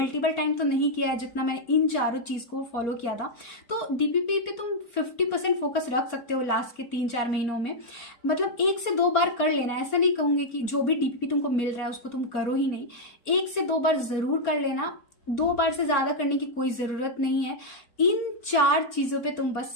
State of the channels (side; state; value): right; late; 4.2 ms